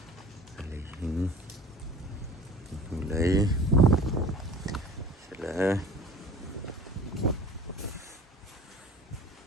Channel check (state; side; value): normal; both; correlation 0.43